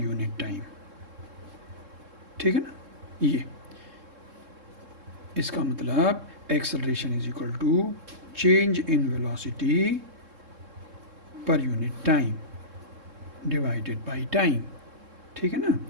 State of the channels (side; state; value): left; late; 3.7 ms